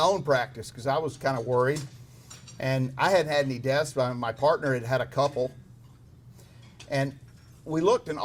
own practice because I was kind of worried. And I hadn't had any deaths, but my partner had had a couple. And we looked, and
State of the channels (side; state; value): both; identical; correlation 1.00